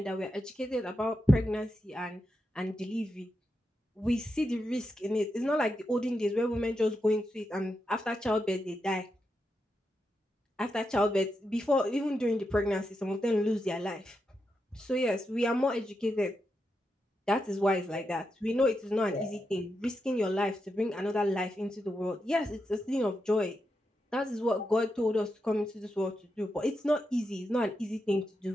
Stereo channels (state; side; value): normal; both; correlation 0.86